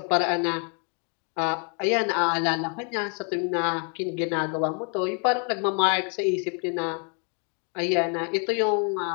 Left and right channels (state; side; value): quieter; right; 39.5 dB